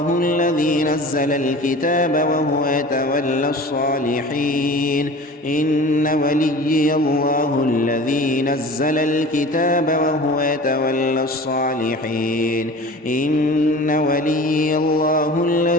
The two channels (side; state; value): both; normal; correlation 0.39